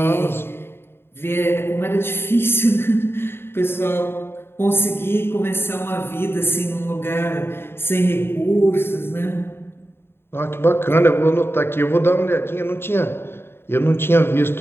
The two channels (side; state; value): right; late; 0.11 ms